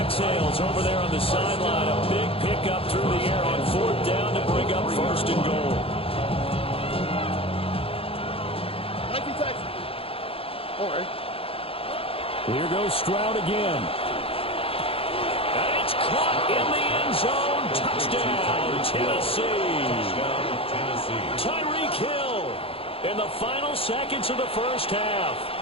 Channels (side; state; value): right; late; 0.27 ms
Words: over there on the sideline. A big pickup through the air on fourth down to bring up first and goal. Here goes Stroud again. It's caught in the end zone. Touchdown, Tennessee. Tyreek Hill in the final seconds of the first half.